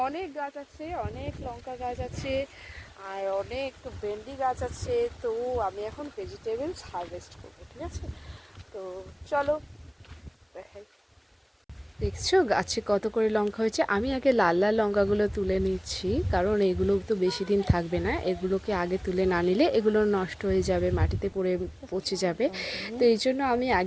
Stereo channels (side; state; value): both; identical; correlation 1.00